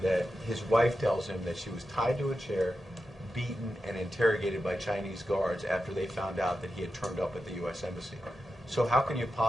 that his wife tells him that she was tied to a chair, beaten, and interrogated by Chinese guards after they found out that he had turned up at the U.S. Embassy. So how can you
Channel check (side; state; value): both; normal; correlation 0.90